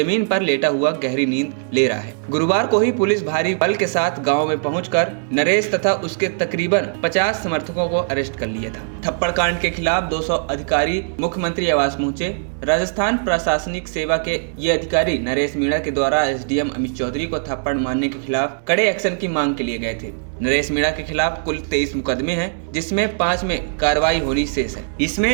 पर लेटा हुआ गहरी नींद ले रहा है। गुरुवार को ही पुलिस भारी बल के साथ गांव में पहुंचकर नरेश तथा उसके तकरीबन 50 समर्थकों को अरेस्ट कर लिया था। थप्पड़ कांड के खिलाफ 200 अधिकारी मुख्यमंत्री आवास पहुंचे। राजस्थान प्रशासनिक सेवा के ये अधिकारी नरेश मीणा के द्वारा एसडीएम अमित चौधरी को थप्पड़ मारने के खिलाफ कड़े एक्शन की मांग के लिए गए थे। नरेश मीणा के खिलाफ कुल 23 मुकदमे हैं, जिसमें 5 में कार्रवाई होनी शेष है।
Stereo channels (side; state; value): left; silent; digital silence